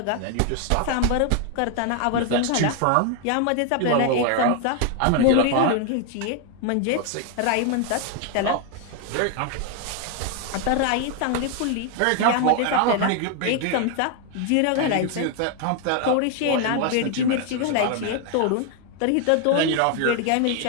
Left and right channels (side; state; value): both; different; correlation 0.00